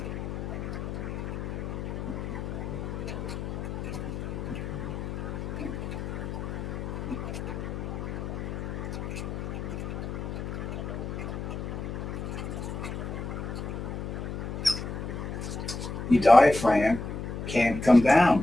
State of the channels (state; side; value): noise; left; hum, 5 dB below the sound